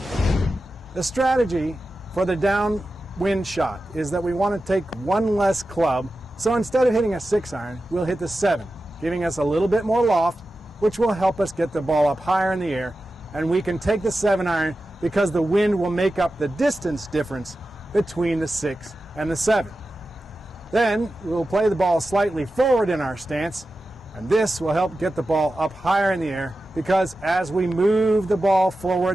The strategy for the downwind shot is that we want to take one less club. So instead of hitting a 6-iron, we'll hit the 7, giving us a little bit more loft, which will help us get the ball up higher in the air. And we can take the 7-iron because the wind will make up the distance difference between the 6 and the 7. Then we'll play the ball slightly forward in our stance, and this will help get the ball up higher in the air because as we move the ball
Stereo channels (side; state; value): both; normal; correlation 0.93